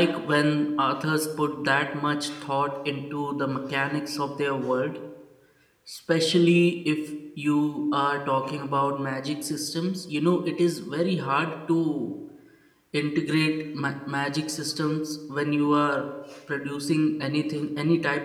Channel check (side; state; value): both; identical; correlation 1.00